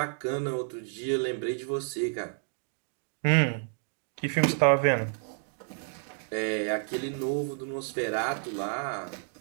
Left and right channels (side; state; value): left; silent; 58 dB below the other